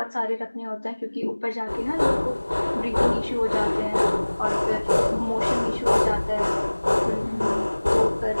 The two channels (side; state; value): both; inverted; correlation -1.00